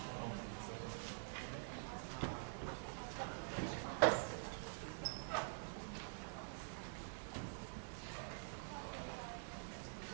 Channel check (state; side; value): silent; left; digital silence